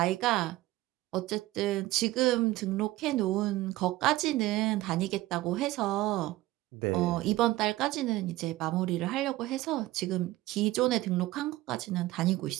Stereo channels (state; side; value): quieter; left; 17.6 dB